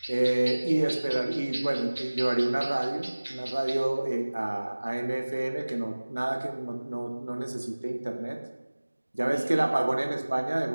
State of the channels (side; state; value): both; inverted; correlation -1.00